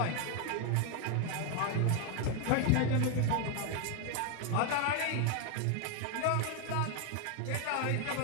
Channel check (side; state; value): both; different; correlation 0.01